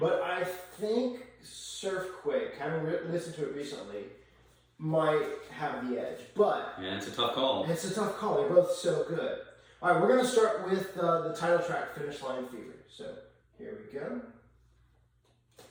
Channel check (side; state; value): both; identical; correlation 1.00